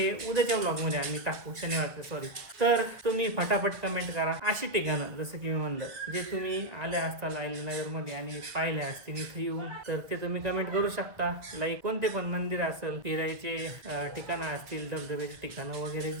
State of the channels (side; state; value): left; late; 1.4 ms